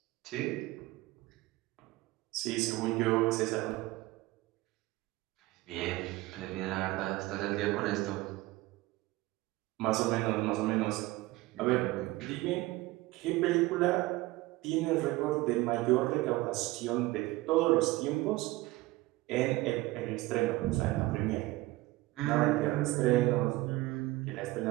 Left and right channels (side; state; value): left; quieter; 19.4 dB